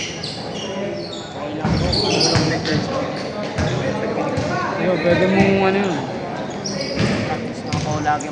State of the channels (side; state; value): both; identical; correlation 1.00